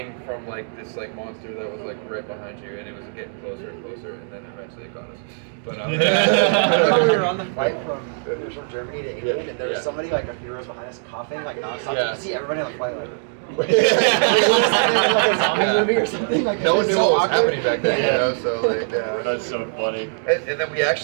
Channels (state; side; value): silent; left; digital silence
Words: from like this like monster that was like right behind you, and it was getting closer and closer, and then eventually it got us. But we were on the flight from Germany to England, and there was somebody like a few rows behind us coughing like nonstop. You could see everybody on the flight like. Like a zombie movie or something. Like no one knew what was happening back then, you know. So like, that's so funny. And then we